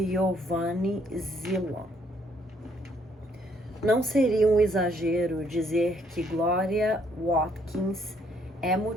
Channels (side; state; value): both; normal; correlation 0.68